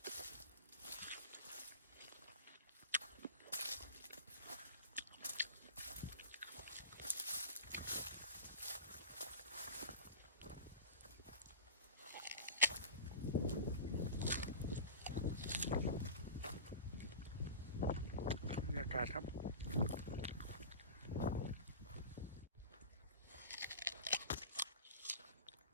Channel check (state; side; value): inverted; both; correlation -0.31